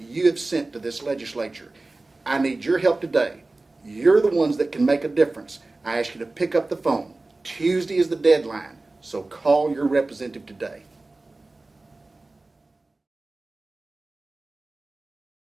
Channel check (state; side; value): quieter; left; 3.1 dB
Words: have sent to this legislature. I need your help today. You're the ones that can make a difference. I ask you to pick up the phone. Tuesday is the deadline, so call your representative today.